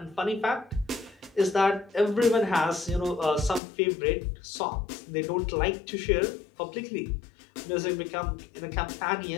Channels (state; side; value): drops out; right; at 3.6 s